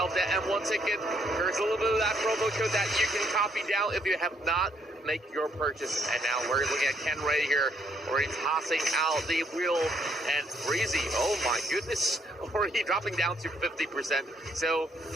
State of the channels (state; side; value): normal; both; correlation 0.70